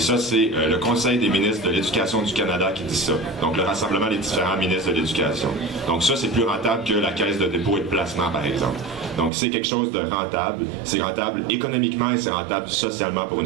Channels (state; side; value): drops out; left; at 9.3 s